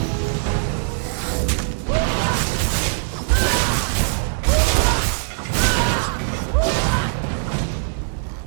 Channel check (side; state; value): left; silent; digital silence